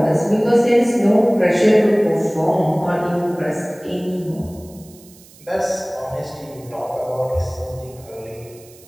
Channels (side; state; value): right; noise; hiss, 24 dB below the sound